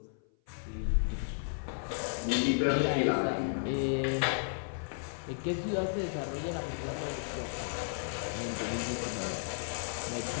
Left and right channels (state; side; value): silent; right; 55 dB below the other